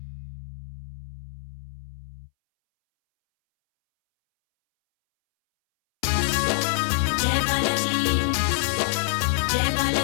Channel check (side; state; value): right; silent; 62 dB below the other